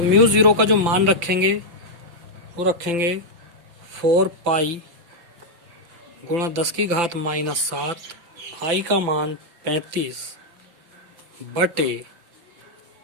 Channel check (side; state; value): left; late; 5.9 ms